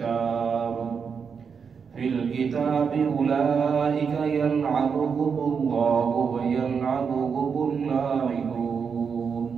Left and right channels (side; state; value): left; quieter; 6.2 dB